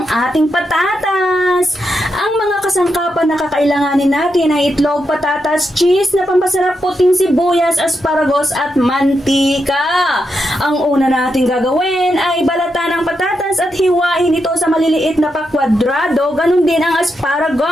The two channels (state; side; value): normal; both; correlation 0.84